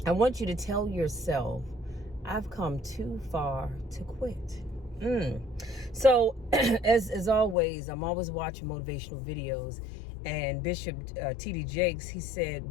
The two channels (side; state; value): right; drops out; at 7.6 s